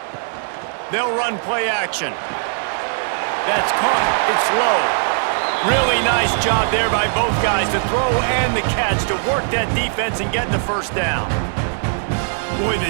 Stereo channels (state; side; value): silent; left; digital silence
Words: They'll run play action. That's caught. It's low. Really nice job there by both guys to throw and the catch to work that defense and get the 1st down. Boy,